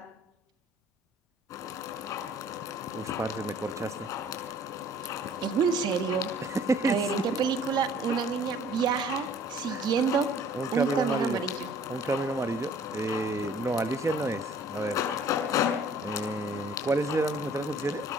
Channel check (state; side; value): normal; both; correlation 0.54